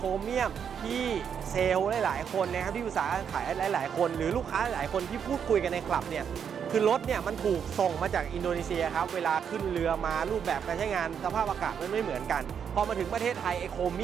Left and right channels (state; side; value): quieter; left; 7.7 dB